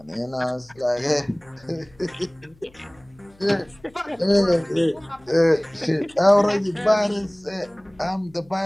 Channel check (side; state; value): left; noise; hum, 28 dB below the sound